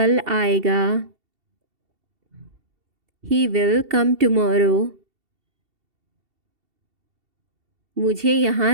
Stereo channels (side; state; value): left; late; 2.7 ms